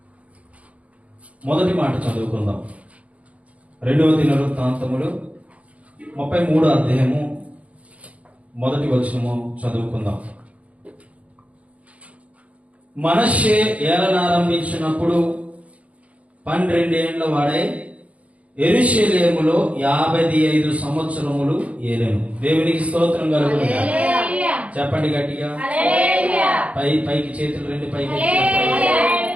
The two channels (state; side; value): late; left; 0.066 ms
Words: మొదటి మాట చదువుకుందాం. 2వ దినవృత్తాంతములు 33వ అధ్యాయము మొదటి వచనము చదువుకుందాం. మనష్షే ఏలనారంభించినప్పుడు 12 ఏండ్ల వాడై యెరూషలేములో 55 సంవత్సరములు ఏలెను. దేవునికి స్తోత్రం కలుగును గాక. చెప్పండి గట్టిగా. పైకి చేతులు రెండు పైకి.